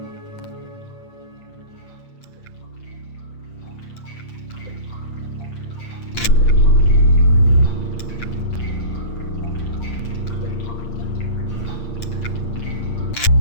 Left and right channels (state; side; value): late; right; 8.7 ms